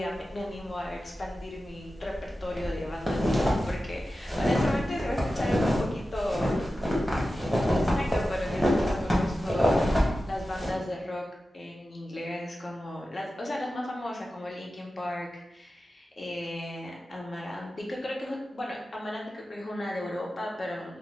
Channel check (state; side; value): normal; both; correlation 0.93